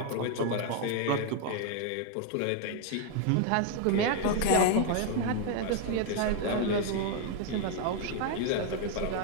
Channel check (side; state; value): both; different; correlation 0.01